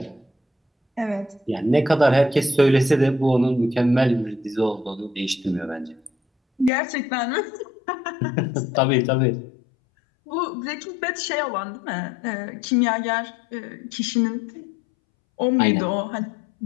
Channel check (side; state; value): right; drops out; at 6.7 s